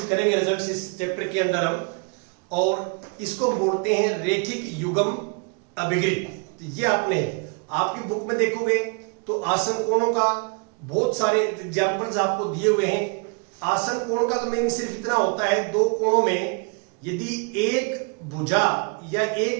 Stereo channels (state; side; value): quieter; left; 36.0 dB